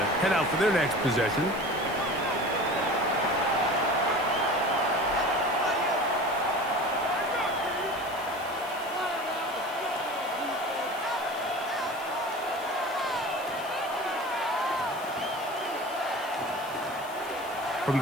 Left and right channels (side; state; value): left; noise; hiss, 18 dB below the sound